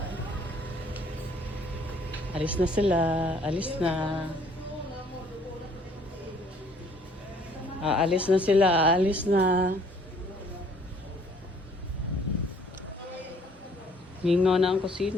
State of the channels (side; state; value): both; normal; correlation 0.59